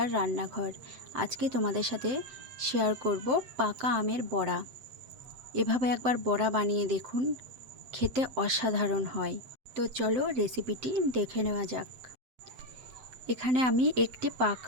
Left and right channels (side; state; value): left; late; 7.7 ms